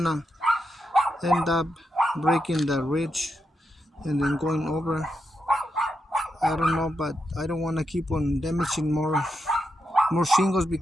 end up breaking the ridge and then going over. I don't know, but I don't want to keep on damaging more shingles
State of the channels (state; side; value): normal; both; correlation 0.85